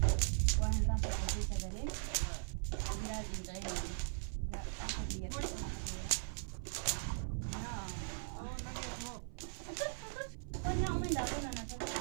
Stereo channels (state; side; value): silent; left; 51 dB below the other